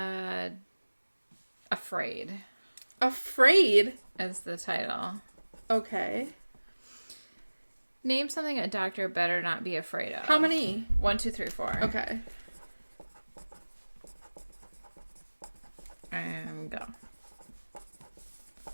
Afraid. Afraid? Is the title. Okay. Name something a doctor better not be afraid of. How many? 1, 2, 3, 4. Okay. And go.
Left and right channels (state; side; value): inverted; both; correlation -1.00